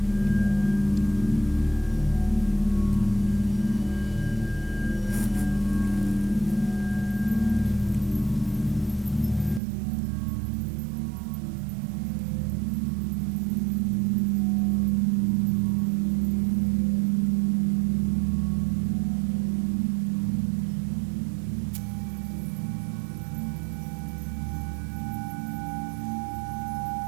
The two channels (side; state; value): left; drops out; at 9.6 s